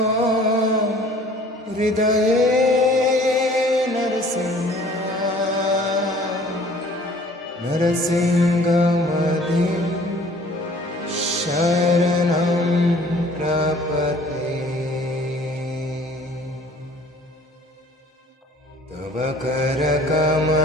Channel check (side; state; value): both; normal; correlation 0.53